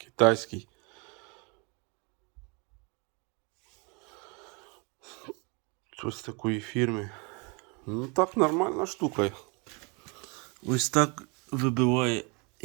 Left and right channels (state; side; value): quieter; left; 31.9 dB